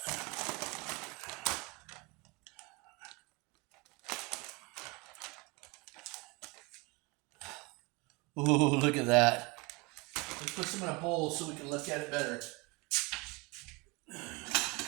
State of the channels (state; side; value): quieter; left; 26.6 dB